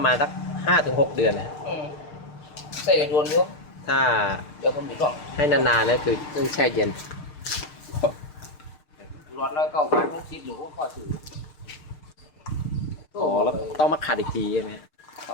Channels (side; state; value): right; late; 6.6 ms